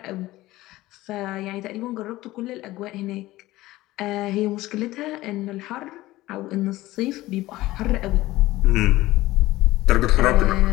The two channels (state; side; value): quieter; right; 17.5 dB